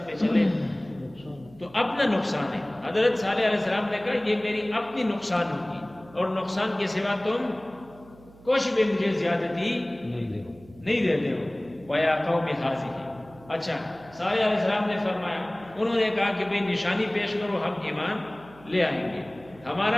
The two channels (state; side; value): noise; right; hum, 23 dB below the sound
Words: پہ چلے تو اپنا نقصان ہے۔ حضرت صالح علیہ السلام نے کہا یہ میری اپنی نقصان ہوگی، اور نقصان کے سوا تم کچھ بھی مجھے زیادتی نہیں دیتے ہو۔ وَيَا قَوْمِ هَٰذِهِ، اچھا صالح علیہ السلام نے فرمایا، انہوں نے کہا کہ بھئی نشانی پیش کرو، ہم ایمان لے آئیں گے۔